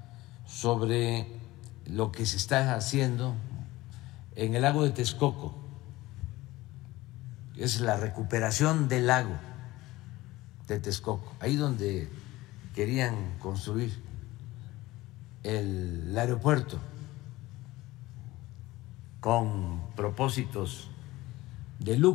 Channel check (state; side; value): quieter; right; 18.5 dB